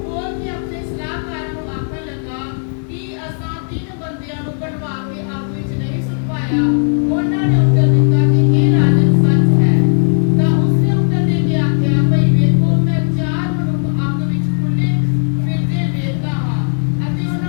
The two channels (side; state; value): right; silent; digital silence